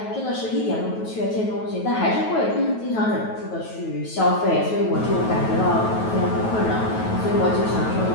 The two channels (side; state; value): right; late; 9.2 ms